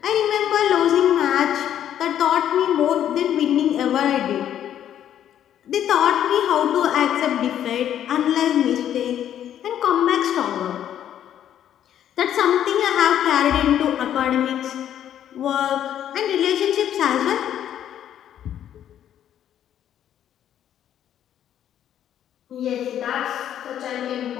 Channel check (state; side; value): quieter; right; 10.4 dB